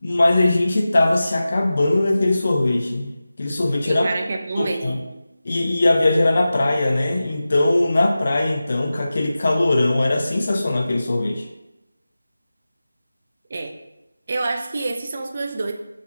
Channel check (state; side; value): inverted; both; correlation -0.95